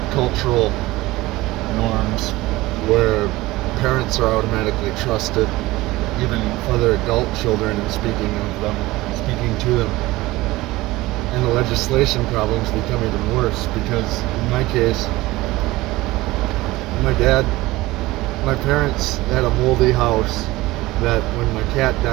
cultural norms where parents are automatically trusted, even for their adult children, and speaking to them. And the legislation problems become even worse because, in my case, my parents had a moldy house that when my cat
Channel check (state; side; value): quieter; left; 19.1 dB